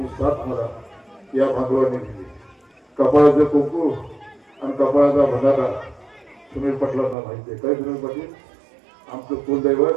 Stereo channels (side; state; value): left; drops out; at 7.2 s